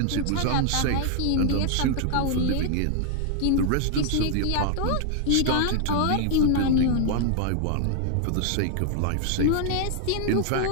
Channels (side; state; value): both; different; correlation 0.00